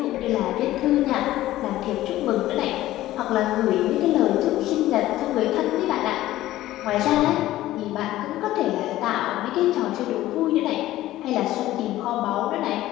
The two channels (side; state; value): right; quieter; 15.2 dB